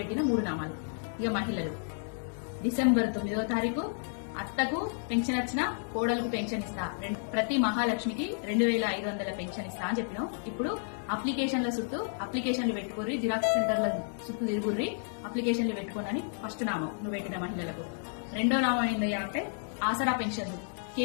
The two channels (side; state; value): right; silent; digital silence